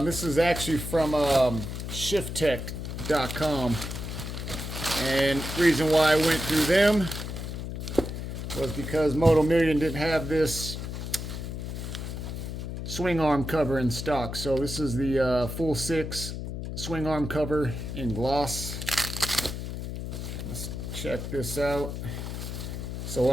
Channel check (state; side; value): noise; left; hum, 6 dB below the sound